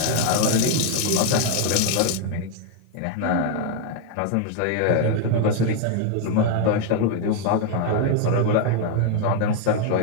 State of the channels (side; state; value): both; different; correlation 0.00